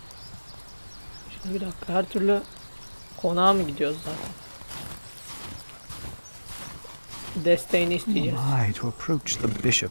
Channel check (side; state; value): both; inverted; correlation -1.00